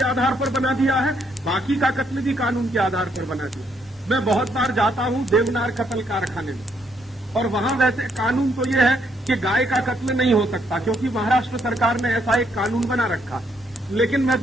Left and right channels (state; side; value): normal; both; correlation 0.73